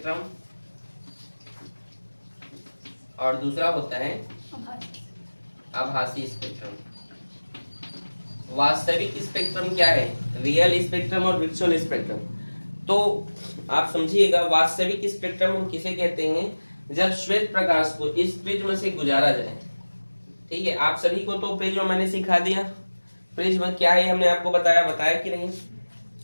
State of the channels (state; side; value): inverted; both; correlation -1.00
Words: और दूसरा होता है आभासी स्पेक्ट्रम। वास्तविक स्पेक्ट्रम क्या है? रियल स्पेक्ट्रम और वर्चुअल स्पेक्ट्रम। तो आप समझिएगा, वास्तविक स्पेक्ट्रम हम किसे कहते हैं? जब श्वेत प्रकाश को इस प्रिज्म से गुजारा जाए। ठीक है, आप सभी को तो प्रिज्म मैंने सिखा दिया। प्रिज्म क्या है हमने आपको बताया कि नहीं?